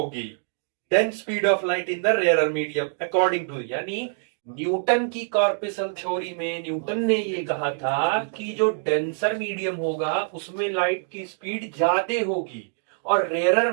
than speed of light in the rarer medium according to, यानी न्यूटन की कॉर्पस्कल थ्योरी में न्यूटन ने ये कहा था कि जो डेंसर मीडियम होगा उसमें लाइट की स्पीड ज्यादा होगी और रेयरर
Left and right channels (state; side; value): silent; left; digital silence